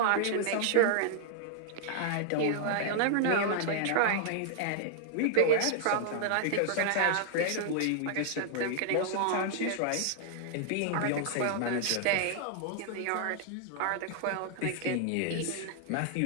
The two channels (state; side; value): different; both; correlation 0.00